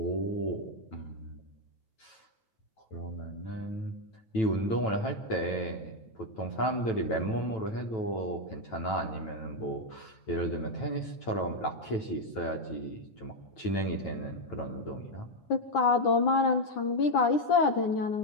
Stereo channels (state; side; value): late; right; 9.1 ms